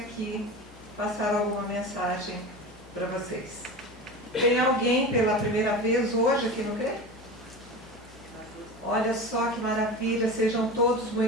passar alguma mensagem para vocês. Tem alguém pela primeira vez hoje aqui no CRE? Olha só que maravilha, sejam todos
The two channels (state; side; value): normal; both; correlation 0.30